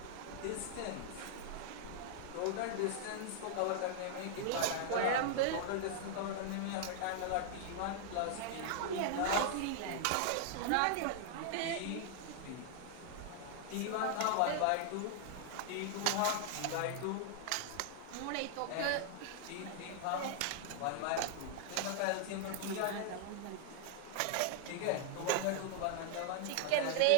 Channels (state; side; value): different; both; correlation -0.01